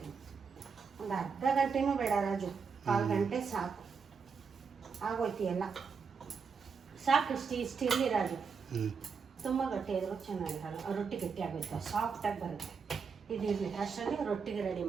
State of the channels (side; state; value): left; quieter; 5.7 dB